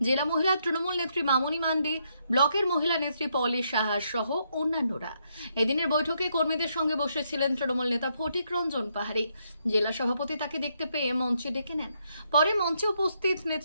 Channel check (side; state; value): both; inverted; correlation -0.76